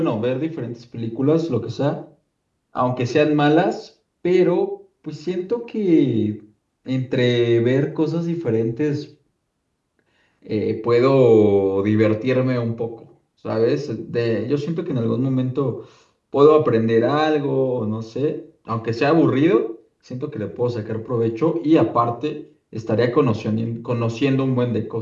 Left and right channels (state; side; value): identical; both; correlation 1.00